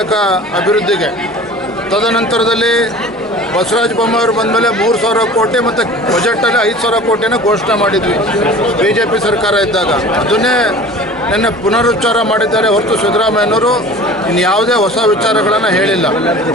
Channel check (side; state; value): both; normal; correlation 0.42